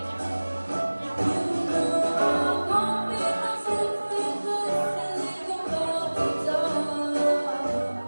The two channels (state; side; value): inverted; both; correlation -1.00